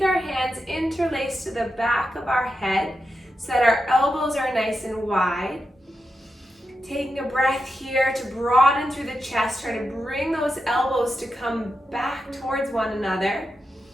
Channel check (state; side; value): normal; both; correlation 0.88